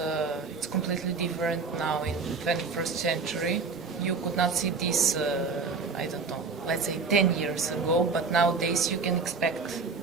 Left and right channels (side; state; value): left; quieter; 4.7 dB